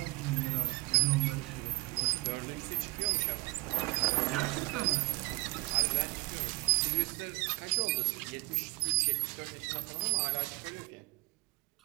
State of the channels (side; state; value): left; quieter; 26.1 dB